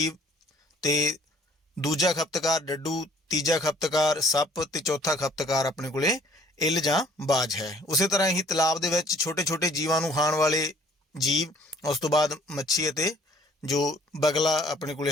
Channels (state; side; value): normal; both; correlation 0.57